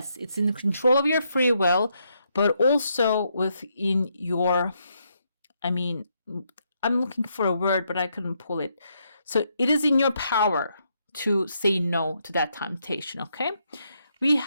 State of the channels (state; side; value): inverted; both; correlation -0.77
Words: it's in the control of your free will, but also within your, I'm looking for a word, but I couldn't pull it. So it is in your power to say no to that temptation, okay? We